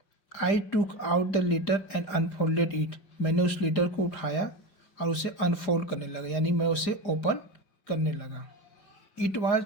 I took out the letter and unfolded it, मैंने उस लेटर को उठाया और उसे अनफोल्ड करने लगा, यानी मैं उसे ओपन करने लगा। It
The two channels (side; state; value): right; late; 4.9 ms